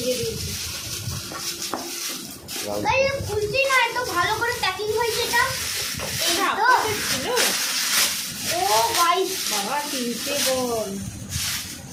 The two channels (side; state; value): both; identical; correlation 1.00